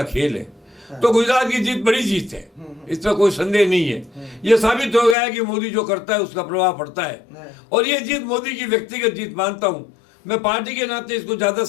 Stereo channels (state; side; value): drops out; right; at 5.2 s